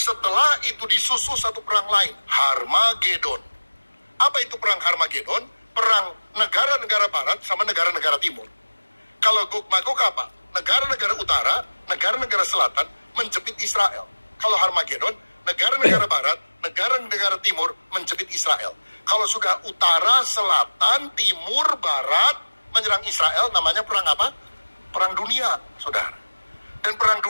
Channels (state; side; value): inverted; both; correlation -1.00